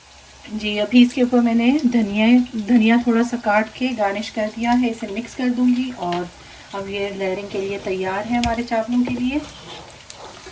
जी अभी इसके ऊपर मैंने धनिया थोड़ा सा काट के garnish कर दिया है, इसे मिक्स कर दूंगी और अब ये लेयरिंग के लिए तैयार है हमारे चावलों के लिए।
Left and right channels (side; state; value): both; identical; correlation 1.00